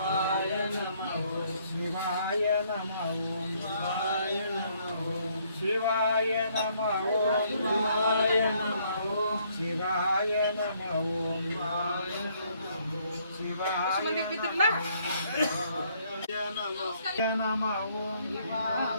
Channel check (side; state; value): both; inverted; correlation -0.67